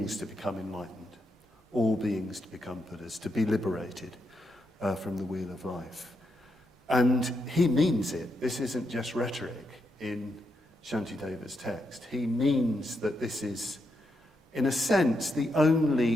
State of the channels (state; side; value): normal; both; correlation 0.83